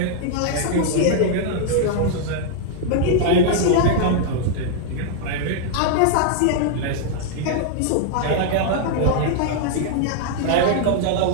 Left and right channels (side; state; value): both; different; correlation -0.01